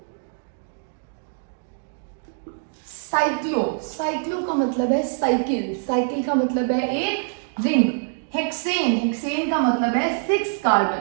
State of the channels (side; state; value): left; silent; 63 dB below the other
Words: साइक्लो का मतलब है साइकिल, साइकिल का मतलब है एक रिंग। हेक्सेन का मतलब है 6 कार्बन